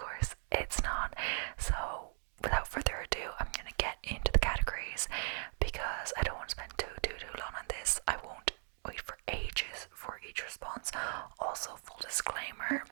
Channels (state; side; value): silent; left; digital silence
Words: it's not. So without further ado, I'm going to get into the categories because I don't want to spend too long on this. I won't wait for ages for each response. Also, full disclaimer,